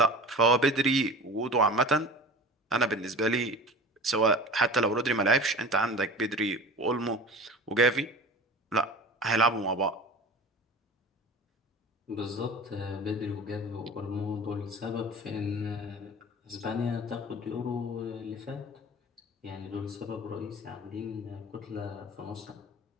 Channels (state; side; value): normal; both; correlation 0.37